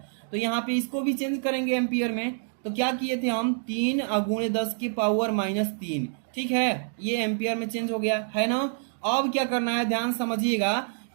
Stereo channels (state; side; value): silent; left; digital silence